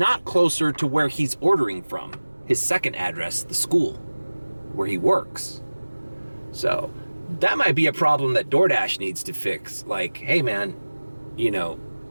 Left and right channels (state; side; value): inverted; both; correlation -1.00